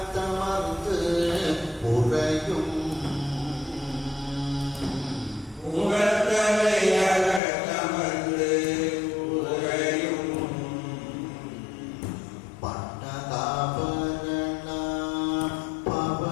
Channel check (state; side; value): drops out; right; at 7.4 s